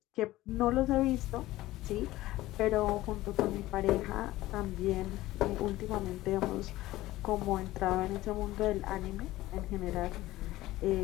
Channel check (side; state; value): right; quieter; 16.8 dB